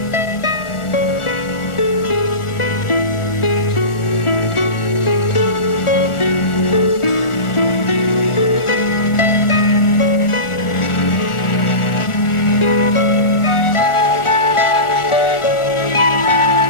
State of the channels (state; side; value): late; right; 1.4 ms